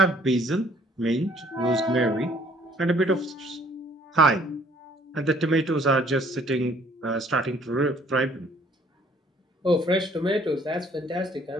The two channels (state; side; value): normal; both; correlation 0.59